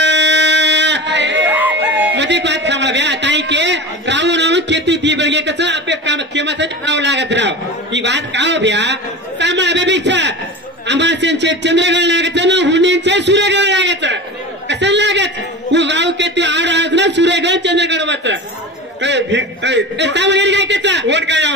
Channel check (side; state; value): both; normal; correlation 0.31